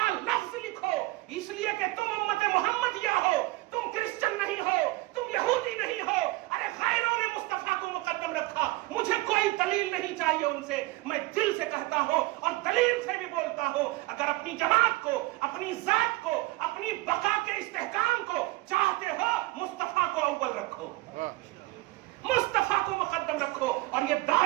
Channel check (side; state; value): left; quieter; 20.2 dB